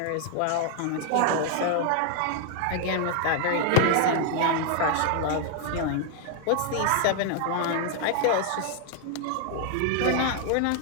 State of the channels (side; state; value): both; different; correlation 0.00